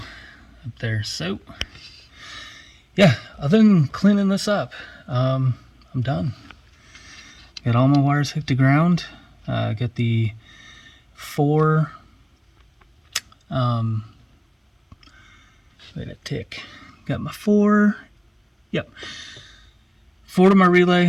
up there. So yeah, other than cleaning this up, I'm done. Got all my wires hooked to ground. Got the 4 wait a tick. Got my 4. Yep. 4 to my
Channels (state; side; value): identical; both; correlation 1.00